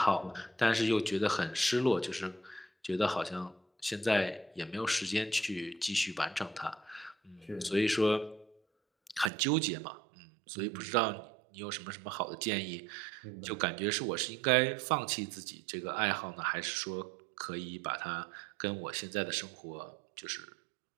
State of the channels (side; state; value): left; drops out; at 9.3 s